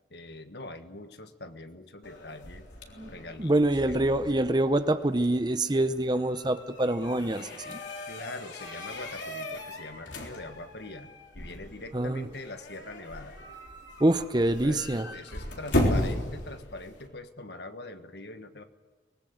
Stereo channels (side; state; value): both; normal; correlation 0.69